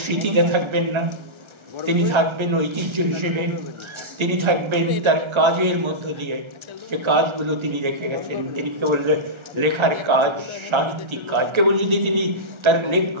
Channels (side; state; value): left; late; 1.4 ms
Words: স্মৃতিতে থাকবেন না, তিনি থাকবেন ঐতিহ্য হিসেবে, তিনি থাকবেন তার কাজের মধ্য দিয়ে। যে কাজগুলো তিনি রেখে গেছেন, তিনি কেবল লেখার কাজ, সাহিত্যিক কাজ, কেবল যদি তিনি তার